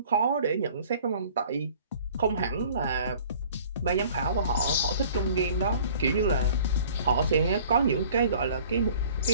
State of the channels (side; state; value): both; inverted; correlation -0.50